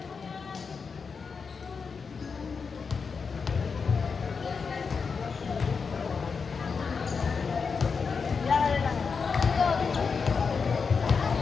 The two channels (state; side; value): quieter; right; 5.4 dB